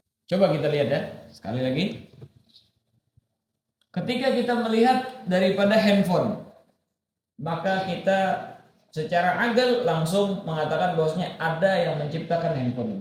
Coba kita lihat ya. Sekali lagi. Ketika kita melihat daripada handphone, maka kita secara akal langsung mengatakan bahwasanya ada yang menciptakan handphone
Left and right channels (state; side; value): identical; both; correlation 1.00